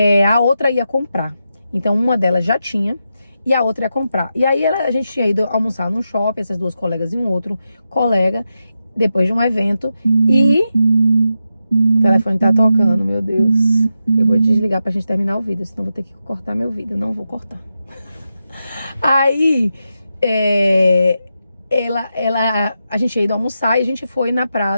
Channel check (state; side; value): inverted; both; correlation -0.88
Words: a outra ia comprar. Então uma delas já tinha e a outra ia comprar. E aí a gente tinha ido almoçar num shopping, essas duas colegas e um outro colega, depois de um evento, e o telefone tá tocando, meu Deus. Eu vou desligar pra gente terminar o vídeo, senão vou ter que cortar meu vídeo. Não vou cortar. Aí, a gente ia ido almoçar e a gente foi na